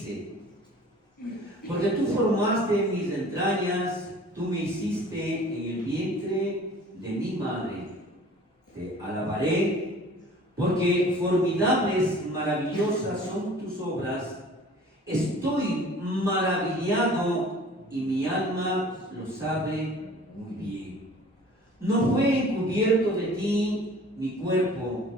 porque tú formaste mis entrañas, tú me hiciste en el vientre de mi madre. Te alabaré, porque formidables, maravillosas son tus obras. Estoy maravillado y mi alma lo sabe muy bien. No fue encubierto de ti mi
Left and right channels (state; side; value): normal; both; correlation 0.47